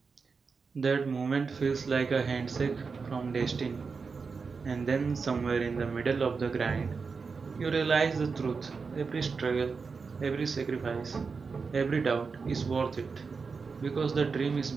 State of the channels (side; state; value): left; quieter; 5.0 dB